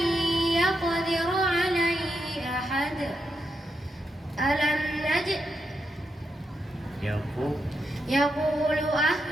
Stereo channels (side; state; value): both; normal; correlation 0.84